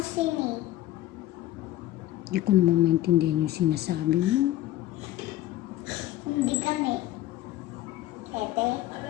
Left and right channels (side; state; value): right; quieter; 14.6 dB